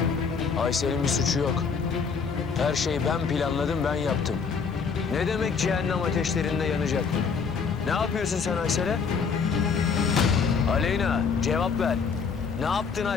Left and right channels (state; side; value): quieter; right; 5.7 dB